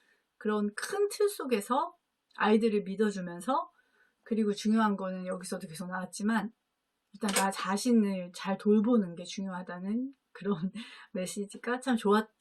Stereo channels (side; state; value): both; identical; correlation 1.00